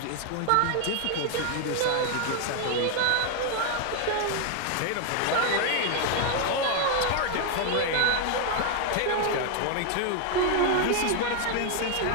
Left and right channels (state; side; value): different; both; correlation 0.00